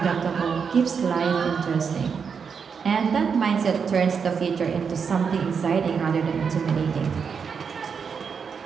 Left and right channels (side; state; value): left; quieter; 6.2 dB